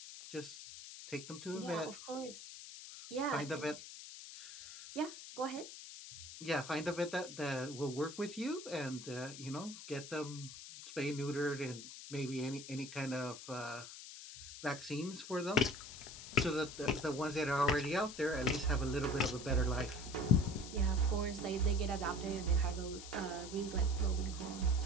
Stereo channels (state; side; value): noise; left; hiss, 12 dB below the sound